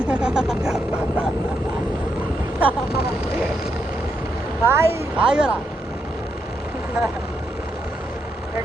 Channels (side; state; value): both; normal; correlation 0.80